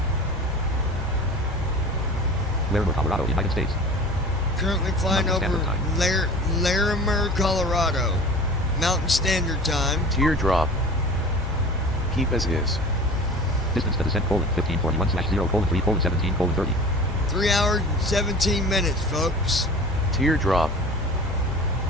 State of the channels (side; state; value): both; normal; correlation 0.38